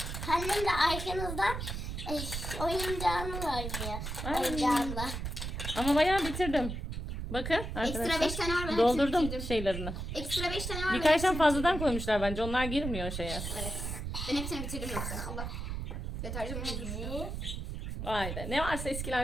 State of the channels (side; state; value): right; noise; rumble, 5 dB below the sound